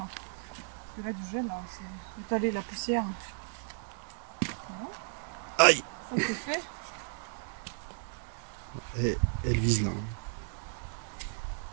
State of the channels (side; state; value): left; silent; digital silence